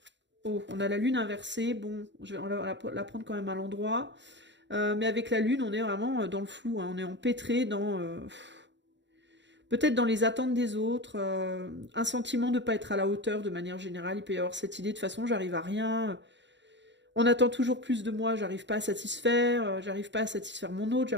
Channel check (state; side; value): late; left; 0.52 ms